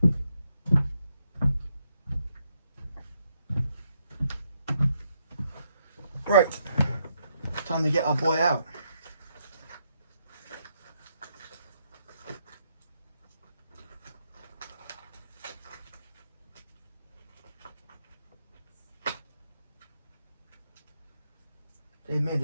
Right, time to get our boy out. They made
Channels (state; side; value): inverted; both; correlation -0.77